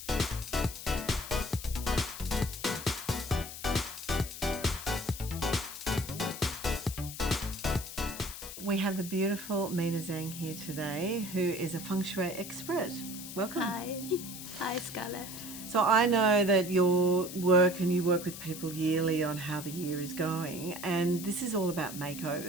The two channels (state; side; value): noise; left; hiss, 10 dB below the sound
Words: We have the beautiful Mina Zhang here today, who is a feng shui expert. Welcome. Hi. Hi, Scarlett. So I know that you work with people yearly on how the year is going, and this is all about